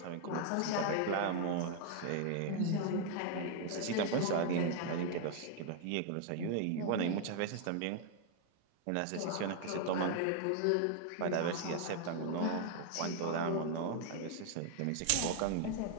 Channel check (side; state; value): both; different; correlation 0.00